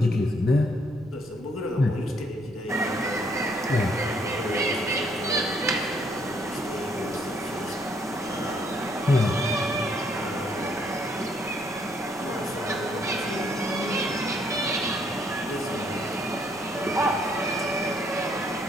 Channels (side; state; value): left; noise; rumble, 23 dB below the sound